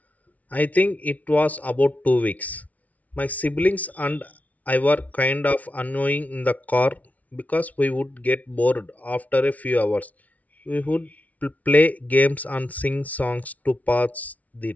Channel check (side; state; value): right; late; 0.071 ms